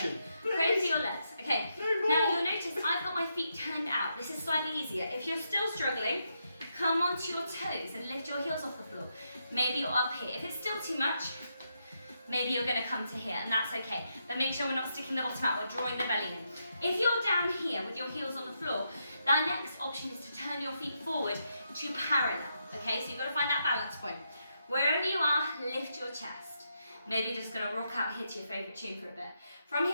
Pray to your legs. Okay. No more. Now you'll notice I've got my feet turned out. This is slightly easier. If you're still struggling, come onto your toes and lift your heels off the floor. Maybe you're up here. If it's still too much, maybe you're going to come to here, and that's okay. But make sure we're not sticking the bottom out, we're drawing the belly in. If you're down here with your heels on the floor, the next option is to turn your feet forward to parallel. Okay, so you've got to find that balance point. Wherever you are, lift your chest. Maybe you're just going to rock out here to your favourite tune for a bit. From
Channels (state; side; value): inverted; both; correlation -0.81